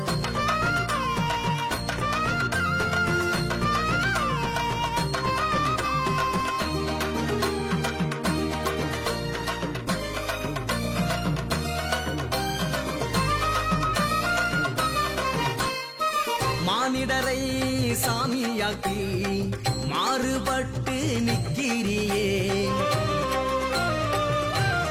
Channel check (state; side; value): identical; both; correlation 1.00